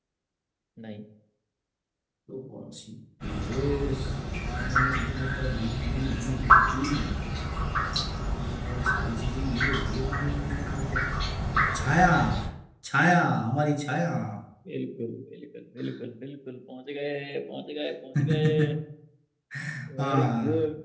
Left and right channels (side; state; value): both; identical; correlation 1.00